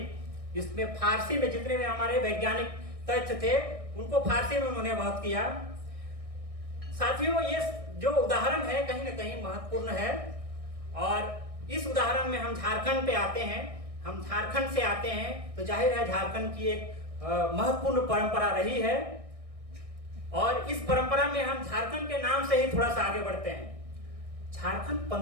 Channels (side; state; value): left; late; 1.6 ms